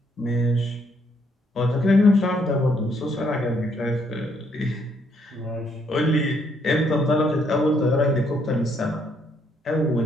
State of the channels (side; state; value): both; normal; correlation 0.71